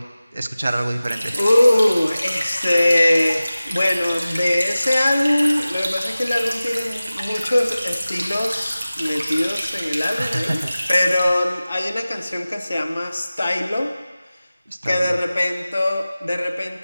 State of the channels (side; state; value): both; inverted; correlation -0.97